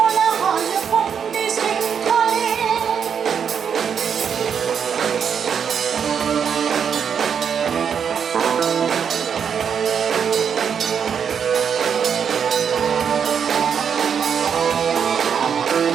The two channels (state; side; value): quieter; left; 7.3 dB